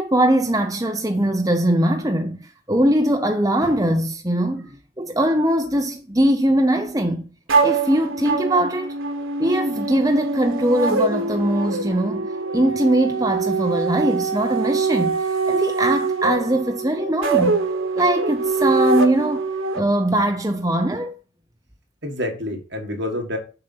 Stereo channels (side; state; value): both; normal; correlation 0.52